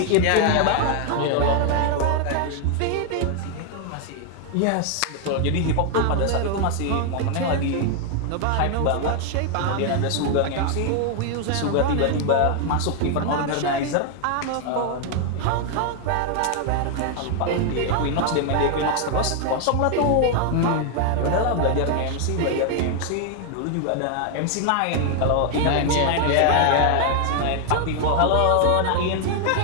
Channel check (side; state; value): both; different; correlation 0.00